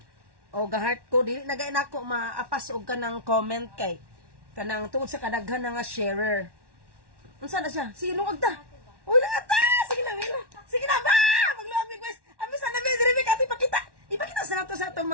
Ga-heart ko dili nagay nako maapas og kanang comment kay kanang tungod sa kadaghan nga sharer. Unsa na siya? Sige lungag ta. Uy, lungag ta. Sige na ba? Magluamig guys. Ami sa nabi diri ati pakita. Ipakita sa nato sa atong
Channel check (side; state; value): left; late; 1.1 ms